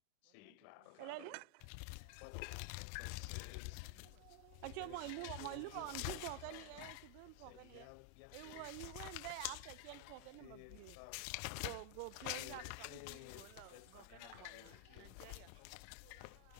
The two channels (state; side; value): different; both; correlation 0.00